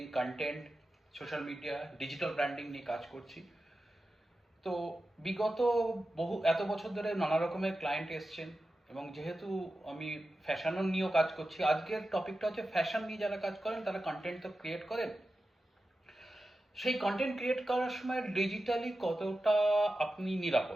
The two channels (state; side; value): normal; both; correlation 0.92